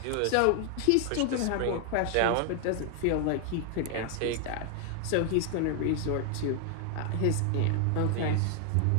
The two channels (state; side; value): different; both; correlation 0.00